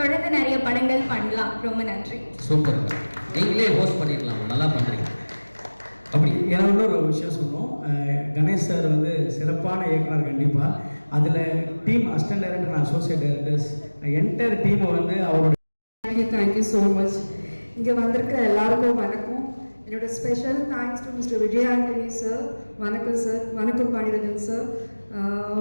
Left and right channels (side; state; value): both; inverted; correlation -1.00